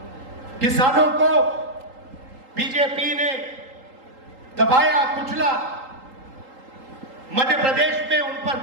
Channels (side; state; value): left; late; 3.8 ms